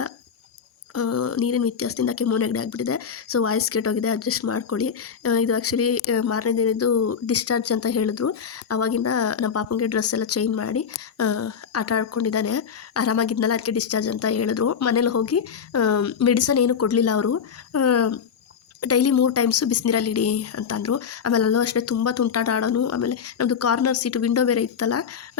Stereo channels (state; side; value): quieter; right; 7.0 dB